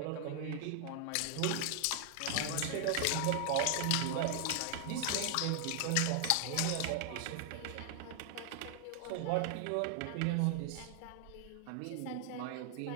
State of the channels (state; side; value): different; both; correlation 0.00